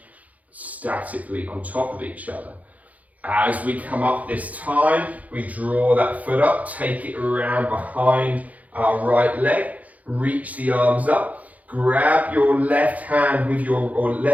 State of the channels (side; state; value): left; late; 0.074 ms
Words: statically on top of each other. As we come up this time, we draw that foot up, take it around behind our right leg, reach the arms up, grab your left hand with or